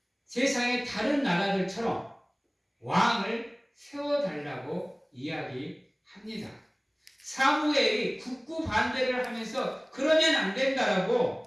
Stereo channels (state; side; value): identical; both; correlation 1.00